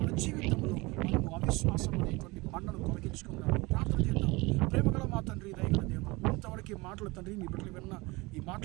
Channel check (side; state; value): left; quieter; 23.8 dB